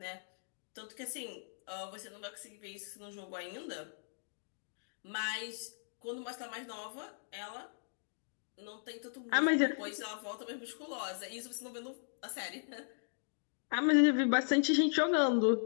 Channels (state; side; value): silent; right; digital silence